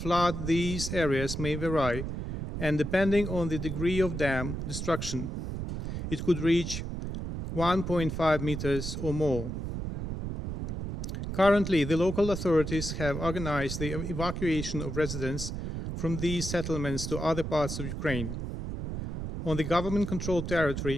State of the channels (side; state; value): right; noise; rumble, 5 dB below the sound